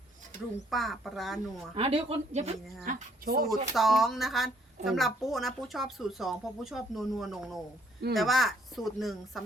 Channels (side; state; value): both; normal; correlation 0.66